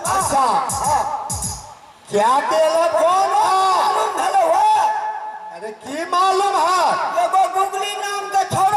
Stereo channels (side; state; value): both; identical; correlation 1.00